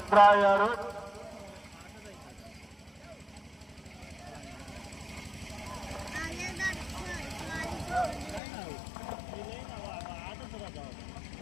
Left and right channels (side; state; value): right; drops out; at 8.4 s